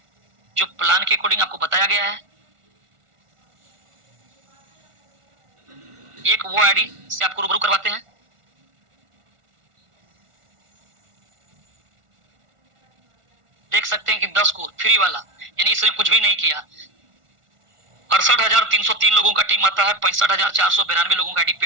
जो प्लान के अकॉर्डिंग आपको बताया गया है। एक वो आईडी से आपको रूबरू करवाते हैं। देख सकते हैं कि 10 को फ्री वाला, यानी इसने कुछ भी नहीं किया। 68,303 लोगों का टीम आता है, 65,492 लोगों का आईडी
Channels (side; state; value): left; late; 1.4 ms